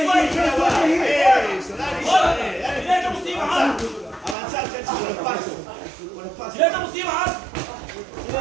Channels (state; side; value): drops out; left; at 4.4 s